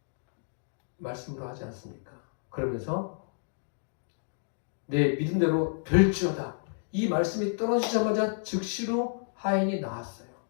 말씀으로 하지 않습니까? 그러면서 내 믿음대로 될지어다. 이 말씀이 떨어지자마자 즉시로 하인이 나았어요.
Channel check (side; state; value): right; silent; digital silence